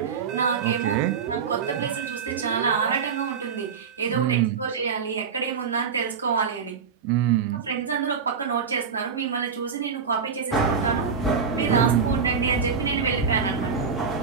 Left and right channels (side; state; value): left; quieter; 6.0 dB